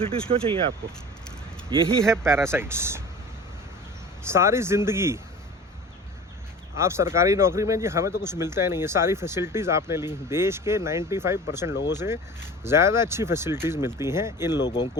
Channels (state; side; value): normal; both; correlation 0.39